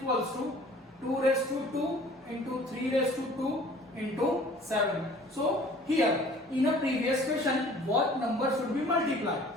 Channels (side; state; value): both; normal; correlation 0.50